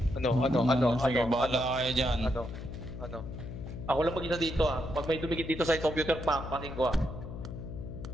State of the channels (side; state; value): left; noise; hum, 9 dB below the sound